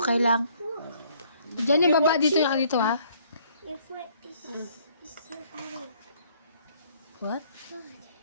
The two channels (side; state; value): both; inverted; correlation -0.63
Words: lang. Diyan yung baba, dito yung dito ha. Your foot is so heavy. What?